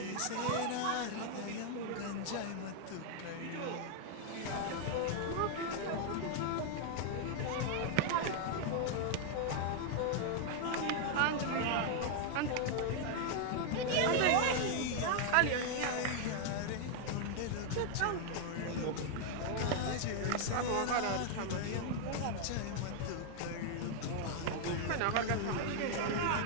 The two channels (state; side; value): different; both; correlation 0.00